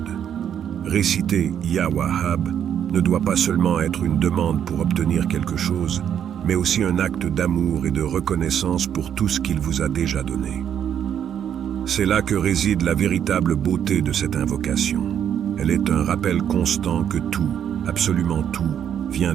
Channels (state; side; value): quieter; left; 9.1 dB